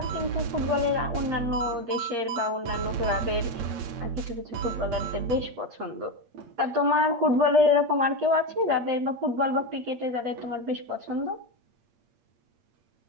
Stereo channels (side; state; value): left; late; 8.6 ms